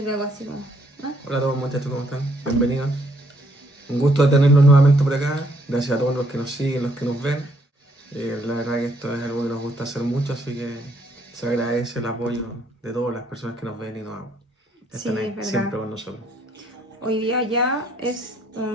luego así como, ¿no? Hola a todos muchachos, ¿cómo están? Bienvenidos. Un gusto de tenerlos nuevamente por acá. Gracias a todos los que nos siguen, los que nos ven. La verdad que esto es algo que nos gusta hacer mucho, así que se agradece el apoyo de todas las personas que nos ven y nos Sí, están ahí es verdad. siempre con nosotros. Hoy día ya es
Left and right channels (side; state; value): both; normal; correlation 0.68